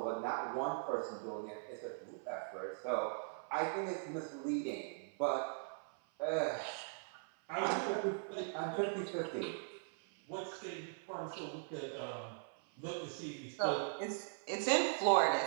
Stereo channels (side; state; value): left; silent; 51 dB below the other